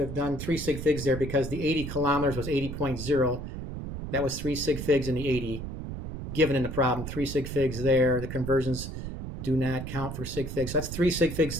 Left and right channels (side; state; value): right; noise; rumble, 7 dB below the sound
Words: done 3 sig figs there because the 80 kilometers was 80.0. That was 3 sig figs in the 80 given in the problem. 3 sig figs there. The conversions do not count for sig figs. So that's 3 sig figs